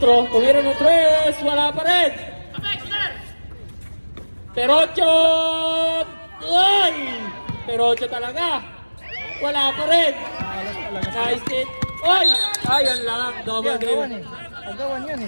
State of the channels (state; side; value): inverted; both; correlation -1.00